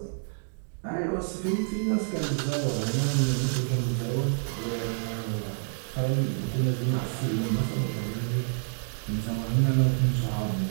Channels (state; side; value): silent; left; digital silence